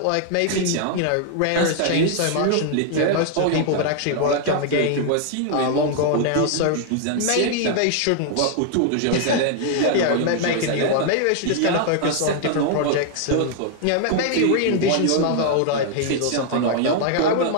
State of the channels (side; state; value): both; different; correlation 0.00